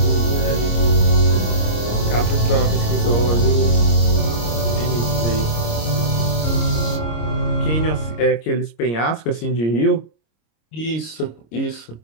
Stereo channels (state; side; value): late; right; 26 ms